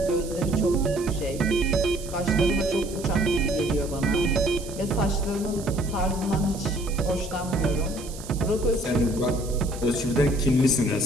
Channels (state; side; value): noise; right; hiss, 15 dB below the sound